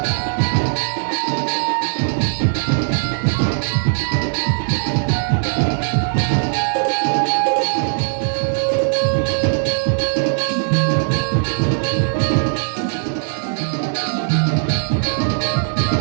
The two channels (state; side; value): silent; left; 60 dB below the other